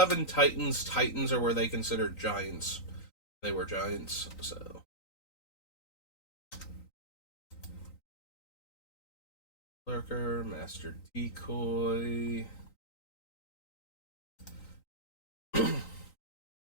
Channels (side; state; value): right; late; 3.9 ms